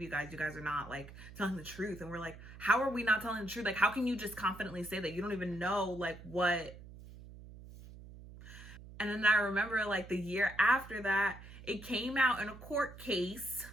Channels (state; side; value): noise; right; hum, 16 dB below the sound